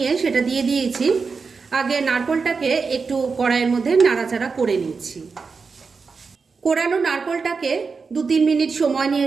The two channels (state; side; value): quieter; left; 4.9 dB